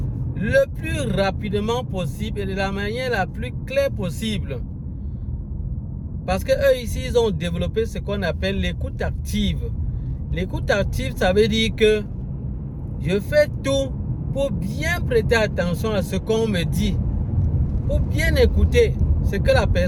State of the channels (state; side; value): identical; both; correlation 1.00